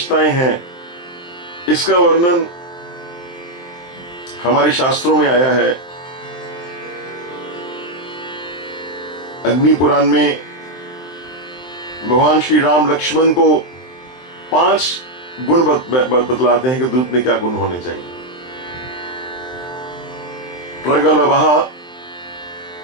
हैं, इसका वर्णन हमारे शास्त्रों में आया है। अग्नि पुराण में भगवान श्री राम लक्ष्मण को 5 गुण बतलाते हैं कि दूत में क्या गुण होने चाहिए। प्रगल्भः,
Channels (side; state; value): right; late; 23 ms